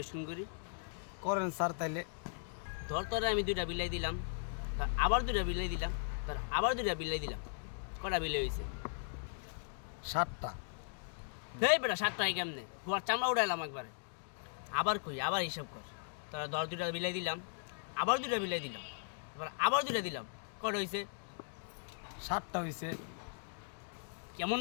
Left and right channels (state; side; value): silent; right; digital silence